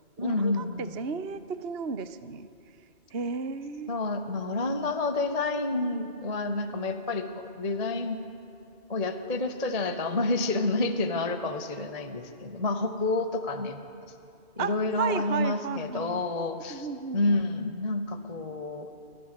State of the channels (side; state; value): left; late; 1.8 ms